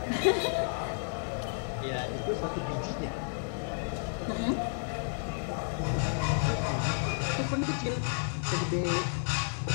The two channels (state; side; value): silent; right; digital silence